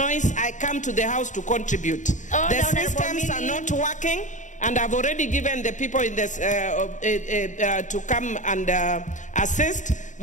I come to the House to contribute. The systems are not working, and I've already given the people in this to come and assist.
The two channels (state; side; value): late; right; 0.36 ms